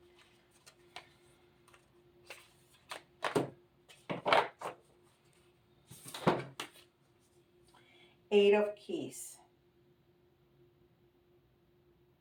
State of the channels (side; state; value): both; identical; correlation 1.00